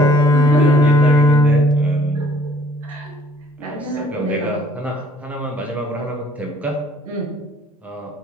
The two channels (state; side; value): normal; both; correlation 0.58